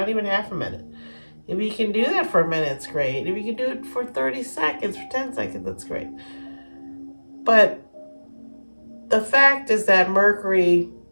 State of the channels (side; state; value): both; inverted; correlation -1.00